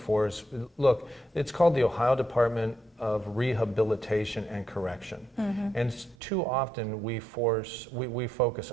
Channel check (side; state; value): left; drops out; at 6.2 s